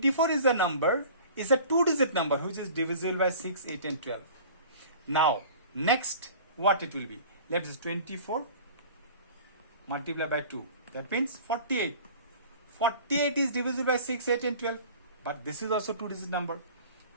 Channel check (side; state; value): both; inverted; correlation -0.43